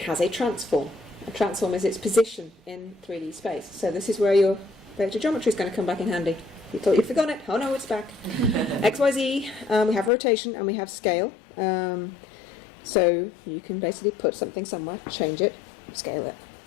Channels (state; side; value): drops out; right; at 10.1 s